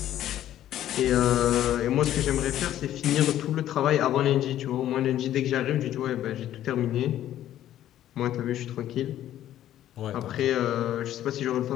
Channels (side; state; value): right; quieter; 12.2 dB